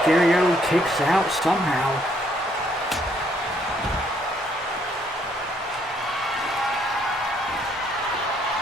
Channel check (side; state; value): both; normal; correlation 0.68